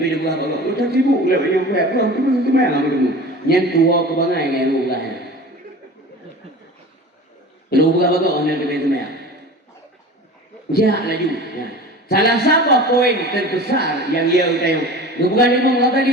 dia buat apa? Udah sibuk lah yang buat apa? Tu tu mana ham tu? Yang tua ke bangai yang lu lah. Lu buat apa? Orang tu mana? Jah laju. Salah satu poin terbesar yang ia utayung. Bukan lima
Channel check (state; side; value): normal; both; correlation 0.37